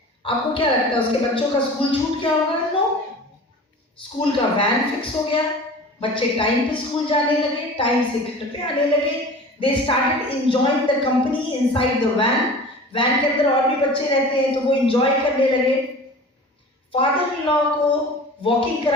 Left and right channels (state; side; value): normal; both; correlation 0.39